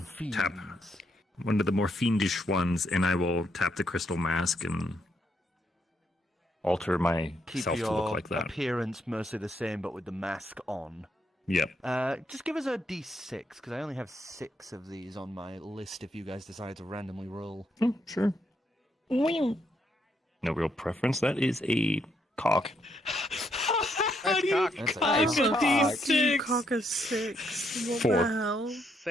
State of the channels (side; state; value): both; normal; correlation 0.76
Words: tap one of the more fiendish ones, and I will tap the crystal mask and alter myself to look like that. Appearance mostly the same, but with the mask on. Yep. Just give us a d6, because I only have 6 of these on my list if you guys decide to randomly roll. Oh, sure. No real preference. That is a cock. How do you cock a You D6? cock a 6. What 4. the hell?